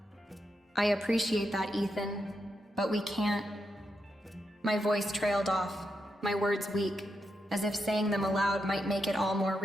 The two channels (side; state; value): both; normal; correlation 0.84